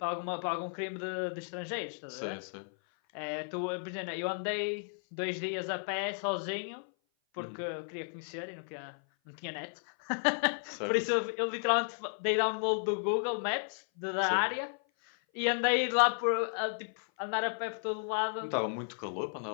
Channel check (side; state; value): right; silent; 55 dB below the other